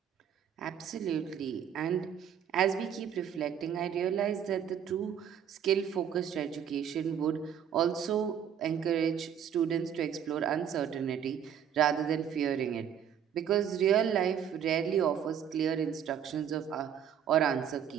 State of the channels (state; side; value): quieter; left; 8.7 dB